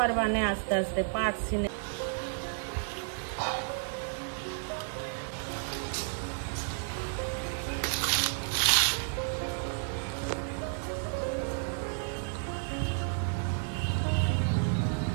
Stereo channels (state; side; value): silent; left; 57 dB below the other